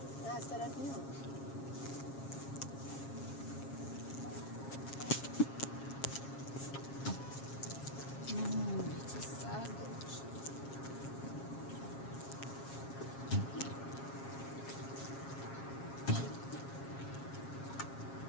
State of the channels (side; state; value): right; late; 7.4 ms